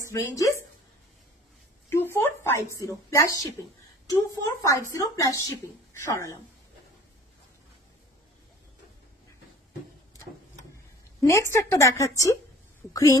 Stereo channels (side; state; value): both; normal; correlation 0.48